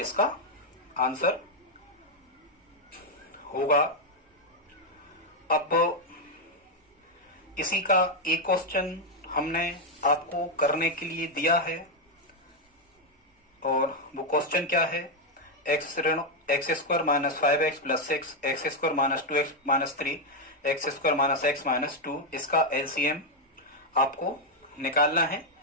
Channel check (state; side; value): normal; both; correlation 0.02